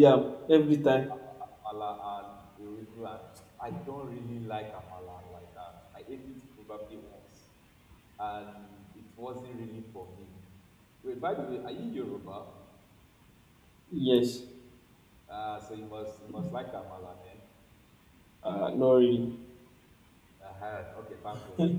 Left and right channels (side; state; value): both; identical; correlation 1.00